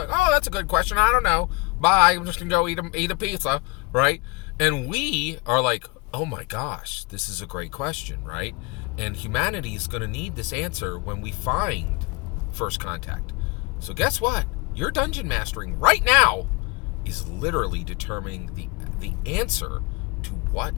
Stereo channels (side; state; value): right; quieter; 26.3 dB